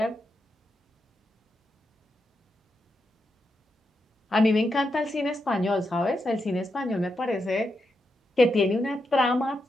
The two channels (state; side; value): normal; both; correlation 0.85